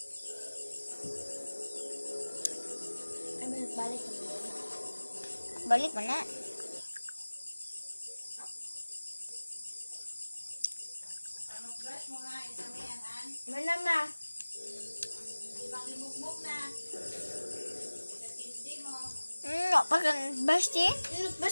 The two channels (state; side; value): inverted; both; correlation -1.00